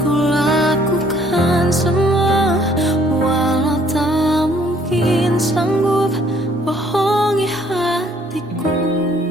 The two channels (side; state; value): both; normal; correlation 0.62